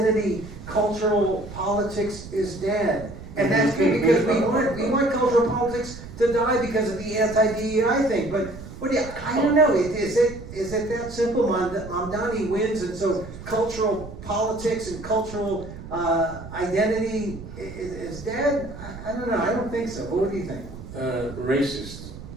cultural politics is dead. And that's good because we want cultural politics to die because of the anti-DEI thing. But I don't know. Is it that simple? Mamdani wins, and so cultural politics and cultural identity is dead? I don't know. I don't think so. What do you think? Racist.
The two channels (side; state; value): right; noise; rumble, 13 dB below the sound